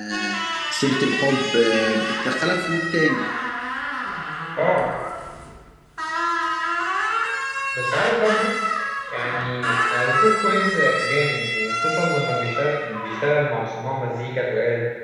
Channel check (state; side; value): identical; both; correlation 1.00